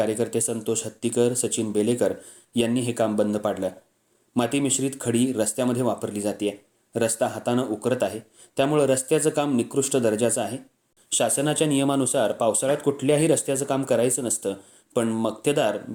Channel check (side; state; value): both; identical; correlation 1.00